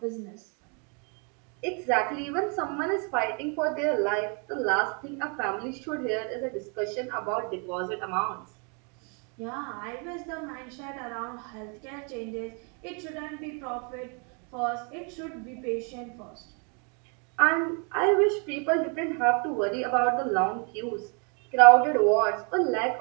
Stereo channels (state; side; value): quieter; left; 36.9 dB